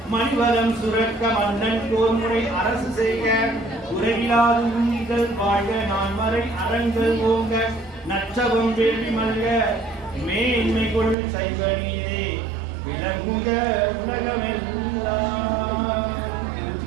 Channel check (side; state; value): left; drops out; at 11.2 s